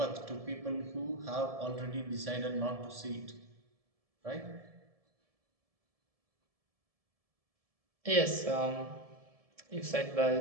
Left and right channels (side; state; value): left; late; 1.7 ms